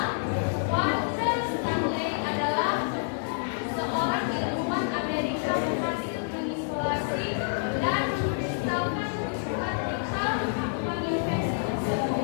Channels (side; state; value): right; silent; digital silence